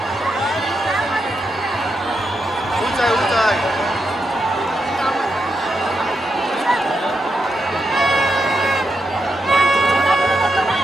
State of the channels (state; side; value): normal; both; correlation 0.84